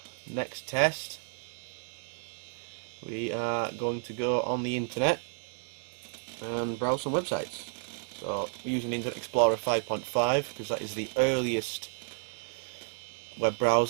next test, we are going to go on the internet and browse some websites. So, we're using Internet Explorer 5.5 because that is the earliest web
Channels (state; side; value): silent; left; 57 dB below the other